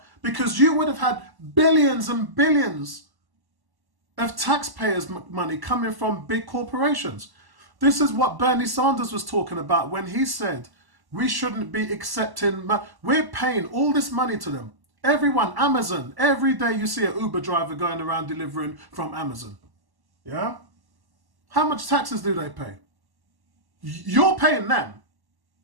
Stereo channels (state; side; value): late; left; 1.1 ms